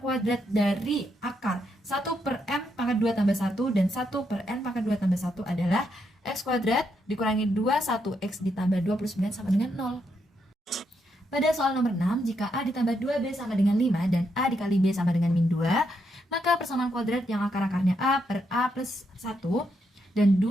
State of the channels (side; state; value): both; normal; correlation 0.79